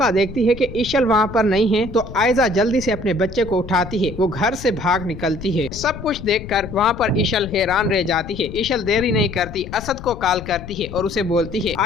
देखती है कि इशल वहाँ पर नहीं है तो आयजा जल्दी से अपने बच्चे को उठाती है। वो घर से भाग निकलती है। सब कुछ देखकर वहाँ पर इशल हैरान रह जाती है। इशल देरी नहीं करती, असद को कॉल करती है और उसे बोलती है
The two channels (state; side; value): noise; left; rumble, 12 dB below the sound